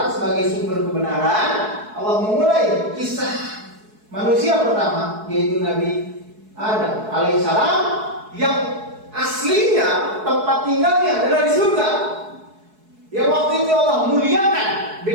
sebagai sumber kebenaran. Allah memulai kisah manusia pertama, yaitu Nabi Adam alaihissalam, yang aslinya tempat tinggalnya adalah di surga. Yang waktu itu Allah muliakan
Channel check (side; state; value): left; late; 4.7 ms